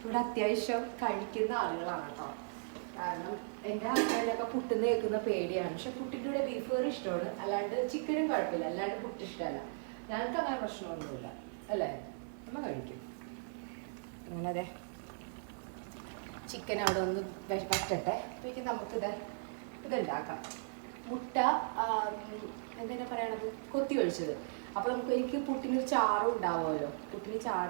അത്യാവശ്യം കഴിക്കുന്ന ആളുകളാണ് കേട്ടോ. കാരണം എൻ്റെ ഹസ്ബൻഡൊക്കെ പുട്ടിന്ന് കേൾക്കുന്ന പേടിയാണ്. പക്ഷെ പുട്ടിൻ്റെ കൂടെ ബീഫ് കറി ഇഷ്ടമാണ്, അല്ലാണ്ട് ചിക്കനും കുഴപ്പമില്ല, അല്ലാണ്ട് പുട്ട് ഇഷ്ടമല്ല. ഞങ്ങൾക്ക് അങ്ങനെ പ്രശ്നമൊന്നുമില്ല അല്ലേ, നമ്മൾ കഴിക്കും. അങ്ങനെ അതെ ചിക്കൻ അവിടെ ഒന്ന് വറ്റട്ടെ. അപ്പോഴേക്കും ഇതുണ്ടാക്കാം. മുട്ട എന്തിനാ പറയണത്, കൊത്തി ഒഴിച്ചത്. അപ്പൊ എനിക്ക് പുട്ടിനൊരു ചാറും ഉണ്ടാവുമല്ലോ. പുട്ടിന്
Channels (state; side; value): silent; left; digital silence